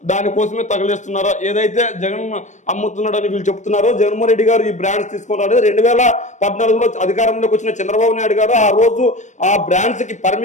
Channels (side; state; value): right; late; 0.35 ms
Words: దానికోసమే తగలేస్తున్నారా, ఏదైతే జగన్ అమ్ముతున్నాడని వీళ్ళు చెప్తున్నారో, జగన్మోహన్ రెడ్డి గారు ఈ బ్రాండ్స్ తీసుకున్నారు. 2014లో అధికారంలోకి వచ్చిన చంద్రబాబు నాయుడు గారు ఆ రోజు ఆ బ్రాండ్స్ కి